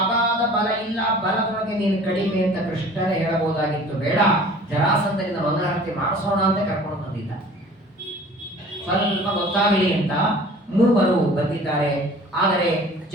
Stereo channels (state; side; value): normal; both; correlation 0.47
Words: ಅಗಾಧ ಬಲ ಇಲ್ಲ, ಬಲದೊಳಗೆ ನೀನು ಕಡಿಮೆ ಅಂತ ಕೃಷ್ಣನೇ ಹೇಳಬಹುದಾಗಿತ್ತು. ಬೇಡ, ಜರಾಸಂಧನಿಂದ ಮಂಗಳಾರತಿ ಮಾಡಿಸೋಣ ಅಂತ ಕರ್ಕೊಂಡು ಬಂದಿದ್ದ. ಸ್ವಲ್ಪ ಗೊತ್ತಾಗಲಿ ಅಂತ 3 ಬಂದಿದ್ದಾರೆ. ಆದರೆ